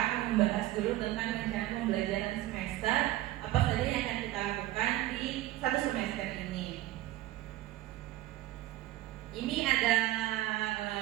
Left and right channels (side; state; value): left; quieter; 15.5 dB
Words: membahas dulu tentang rencana pembelajaran semester, apa saja yang akan kita lakukan di satu semester ini. Ini ada